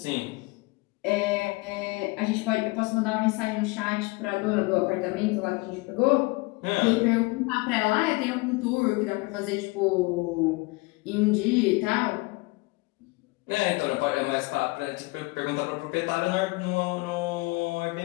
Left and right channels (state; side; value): quieter; right; 24.9 dB